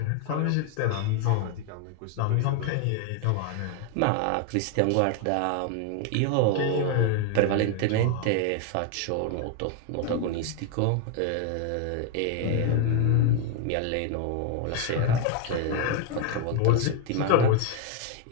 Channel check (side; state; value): both; different; correlation 0.00